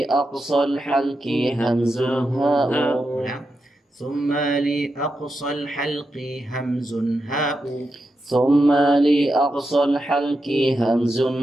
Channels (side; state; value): both; normal; correlation 0.87